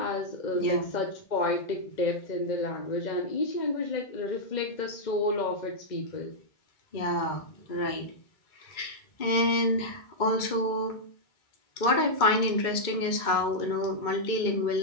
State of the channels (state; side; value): late; right; 2.2 ms